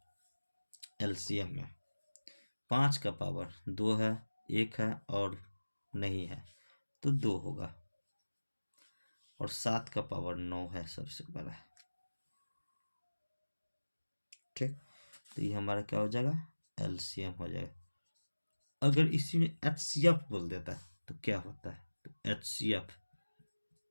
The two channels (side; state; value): both; inverted; correlation -1.00